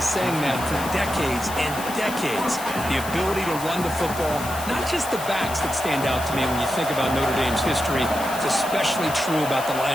that for decades and decades. The ability to run the football, not just the backs that stand out to me when you think about Notre Dame's history. It's especially true about the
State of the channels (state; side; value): noise; left; hiss, 11 dB below the sound